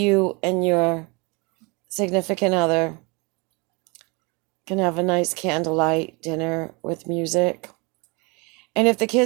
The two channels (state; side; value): quieter; left; 28.9 dB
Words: and your significant other can have a nice candlelight dinner with music. And if the